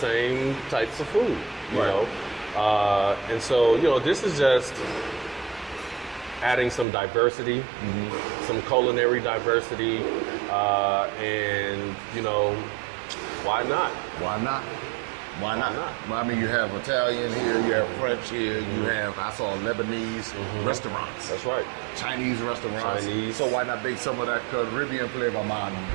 types of food, you know. And so, this is just adding some diversity, some culinary diversity, and, why not? Why not? Why not? Well, I mean, you have Italian here, you have French here, you have, I saw Lebanese restaurants. That's right. Chinese restaurants. Chinese. So why not bake some of that Caribbean flavor, man?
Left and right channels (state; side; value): drops out; left; at 6.9 s